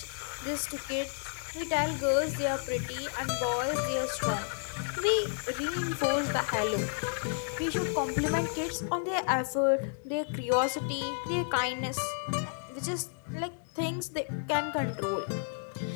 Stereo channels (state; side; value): silent; right; 57 dB below the other